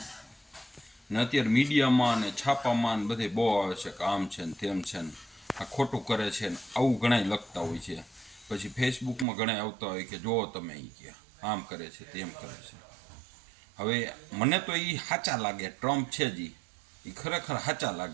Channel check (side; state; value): left; drops out; at 9.2 s